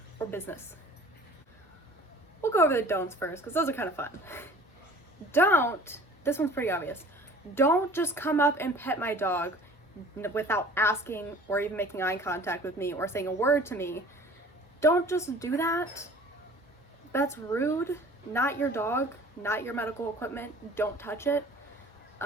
or business. We'll go over the don'ts first because those are kind of fun. This one's pretty obvious. Don't just come up and pet my dog without asking or even making eye contact with me or saying a word to me. Don't just do that. That's rude. Not your dog, not your medical equipment. Don't touch it.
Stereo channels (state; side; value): normal; both; correlation 0.46